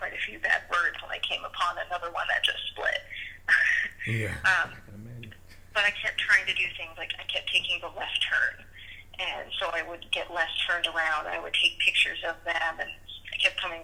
a few bad words when I came upon another one that just split. Yeah, I can imagine. But I kept trying to do things like I kept taking the left turn. And so I would get less turned around. I would take pictures of them, and I kept coming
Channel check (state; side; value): identical; both; correlation 1.00